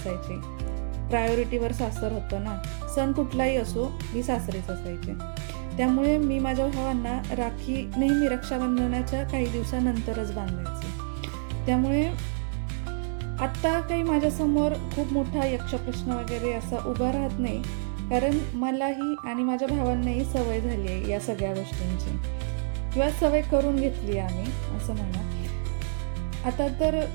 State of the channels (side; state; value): left; silent; 59 dB below the other